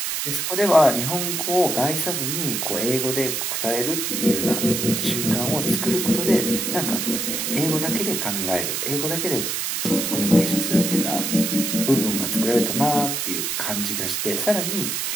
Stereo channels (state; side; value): noise; right; hiss, 1 dB below the sound